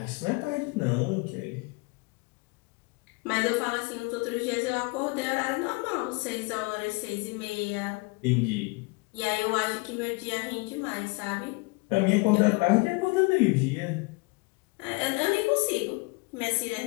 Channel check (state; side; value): quieter; right; 27.6 dB